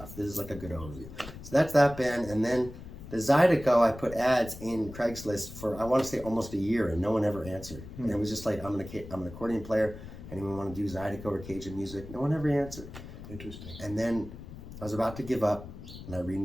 This is like a good overview. So that's that band. And then the Zydeco, I put ads in Craigslist for, I want to say almost a year, and no one ever answered. And it was just like, I'm an accordion player. Anyone want to do Zydeco or Cajun music? No one ever answered. Interesting. And then I was about to give up, and I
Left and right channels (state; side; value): noise; left; rumble, 13 dB below the sound